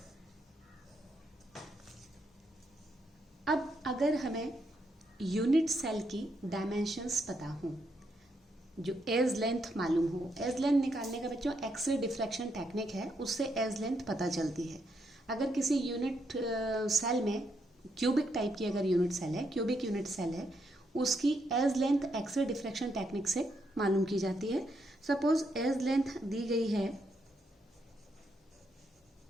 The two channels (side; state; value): both; normal; correlation 0.78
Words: अब अगर हमें यूनिट सेल की डायमेंशंस पता हो, जो एज लेंथ मालूम हो, एज लेंथ निकालने का बच्चों एक्सरे डिफ्रैक्शन टेक्निक है, उससे एज लेंथ पता चलती है. अगर किसी यूनिट सेल में क्यूबिक टाइप की अगर यूनिट सेल है, क्यूबिक यूनिट सेल है, उसकी edge length X ray diffraction technique से मालूम की जाती है. सपोज एज लेंथ दी गई है